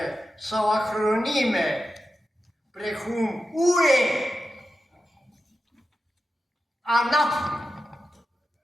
sau acronime, precum UE, ANAF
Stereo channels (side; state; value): both; normal; correlation 0.91